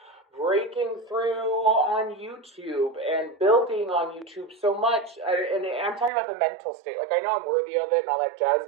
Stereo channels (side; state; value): left; drops out; at 6.1 s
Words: breaking through on YouTube and building on YouTube so much. And I'm talking about the mental state. Like, I know I'm worthy of it and all that jazz,